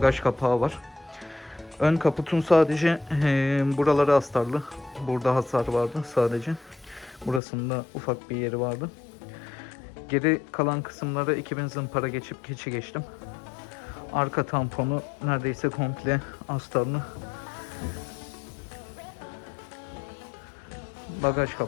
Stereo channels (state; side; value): drops out; right; at 7.4 s